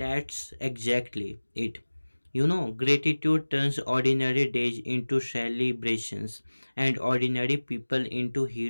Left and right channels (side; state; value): both; inverted; correlation -1.00